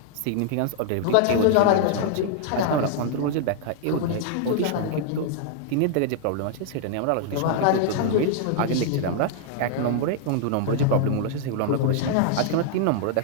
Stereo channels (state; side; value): different; both; correlation -0.01